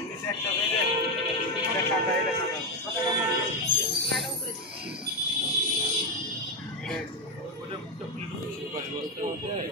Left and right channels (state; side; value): normal; both; correlation 0.08